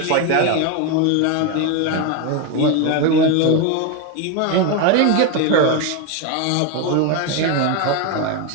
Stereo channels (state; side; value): different; both; correlation 0.02